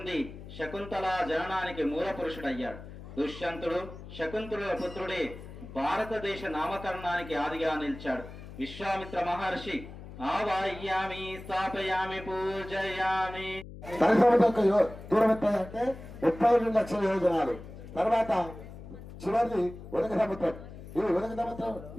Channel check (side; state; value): left; noise; hum, 14 dB below the sound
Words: శకుంతల జననానికి మూల పురుషుడయ్యాడు. దుష్యంతుడు శకుంతలుల పుత్రుడే భారతదేశ నామకరణానికి ఆదిగా నిలిచాడు. విశ్వామిత్ర మహర్షి ఆవాహయామి, స్థాపయామి, పూజయామి. దూరం ఎంత అంటే 32 లక్షల యోజనాలు. తర్వాత చివరిది ఉదక సముద్రం. ఈ ఉదక సముద్రం